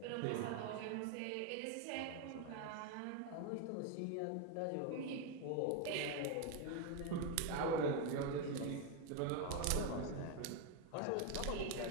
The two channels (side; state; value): both; different; correlation 0.02